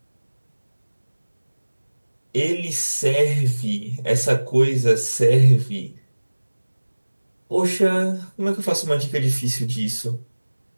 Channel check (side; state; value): both; inverted; correlation -1.00